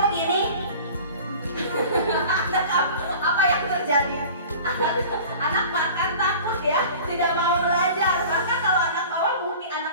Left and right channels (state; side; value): inverted; both; correlation -0.41